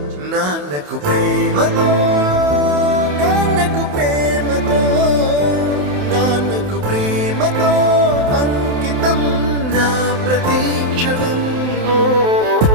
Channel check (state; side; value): late; left; 28 ms